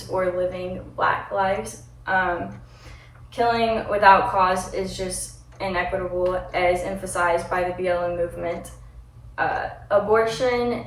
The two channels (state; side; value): identical; both; correlation 1.00